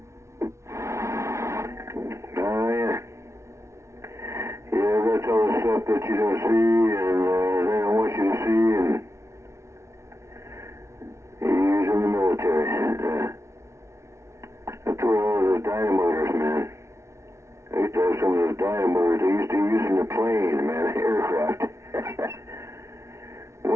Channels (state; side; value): late; left; 0.13 ms